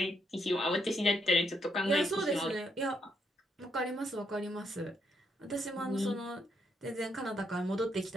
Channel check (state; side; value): normal; both; correlation 0.76